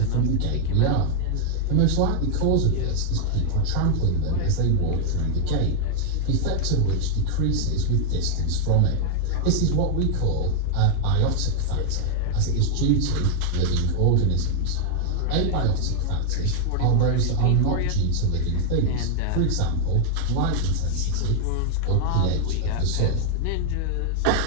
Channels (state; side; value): different; both; correlation 0.00